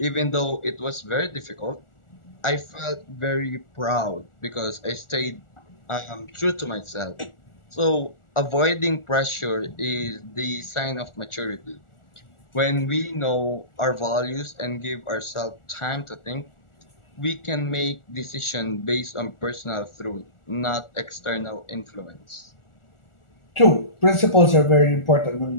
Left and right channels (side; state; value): right; late; 1.4 ms